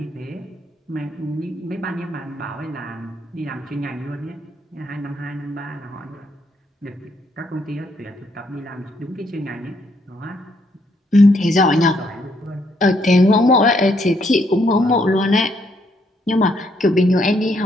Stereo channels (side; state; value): both; normal; correlation 0.72